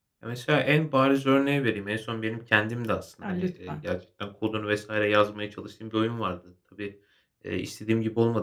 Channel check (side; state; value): both; identical; correlation 1.00